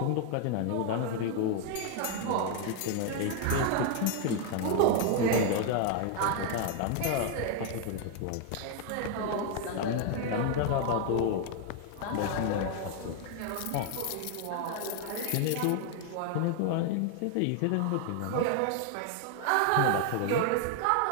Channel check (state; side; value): different; both; correlation 0.00